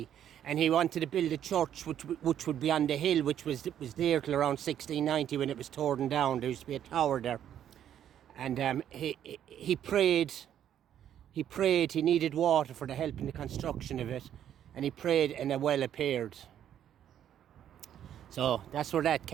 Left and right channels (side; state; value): left; quieter; 10.2 dB